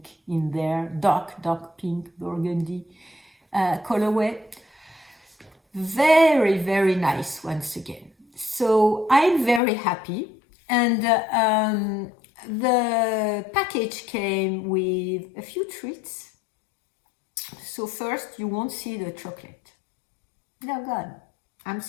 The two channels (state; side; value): drops out; right; at 9.6 s